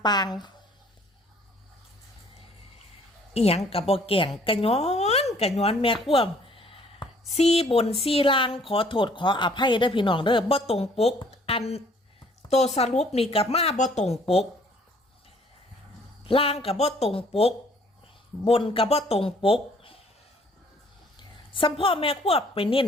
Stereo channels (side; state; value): both; normal; correlation 0.59